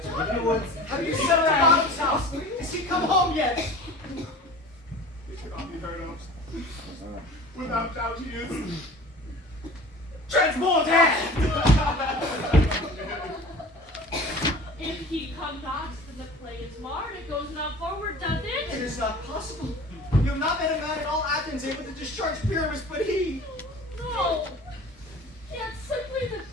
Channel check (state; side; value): normal; both; correlation 0.41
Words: Have you sent her out of house? Has she come home yet? It cannot be heard of. Without doubt he is transported! If he come not, then the play is marred. It goes not forward, does It it? is not possible. You have not met a man in all Athens able to discharge Pyramus, but he. No. It's simply the